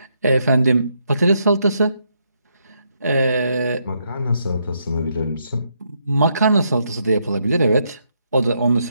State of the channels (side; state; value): both; inverted; correlation -0.77